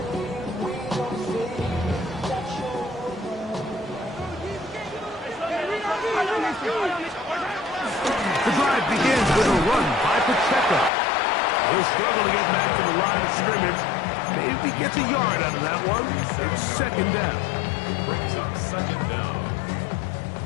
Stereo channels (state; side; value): drops out; right; at 10.9 s